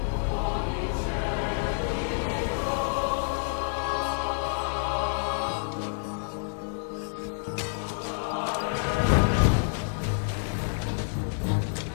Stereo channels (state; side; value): silent; right; digital silence